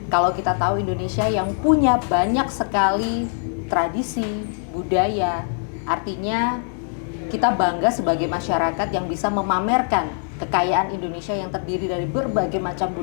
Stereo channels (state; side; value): silent; right; 64 dB below the other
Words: kalau kita tahu Indonesia yang punya banyak sekali tradisi, budaya, artinya kita bangga sebagai masyarakat yang bisa memamerkan kekayaan Indonesia yang terdiri dari berbagai macam